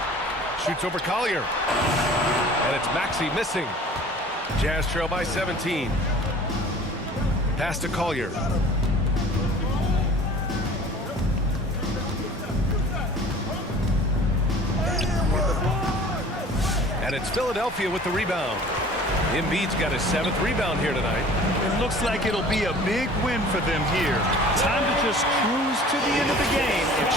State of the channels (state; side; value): normal; both; correlation 0.46